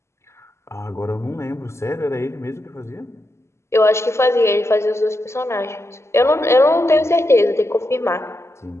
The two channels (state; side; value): late; right; 0.13 ms